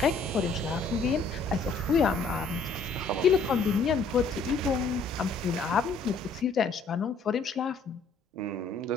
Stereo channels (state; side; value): quieter; right; 4.0 dB